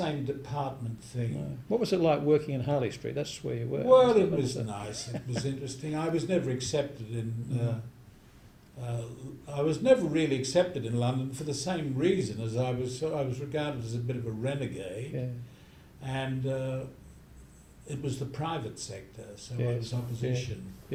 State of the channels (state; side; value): identical; both; correlation 1.00